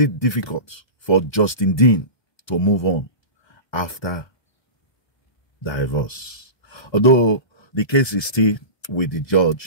difficult for Justin Dean to move on after divorce? Although the case is still with the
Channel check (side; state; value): right; late; 1.2 ms